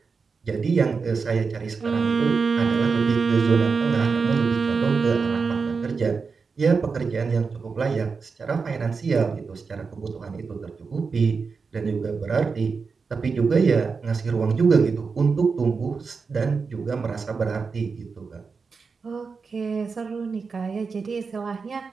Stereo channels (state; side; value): quieter; left; 5.0 dB